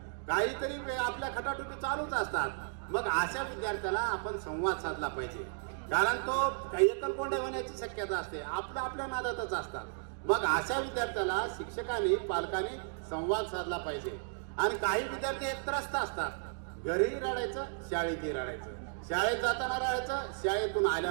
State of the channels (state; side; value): silent; left; digital silence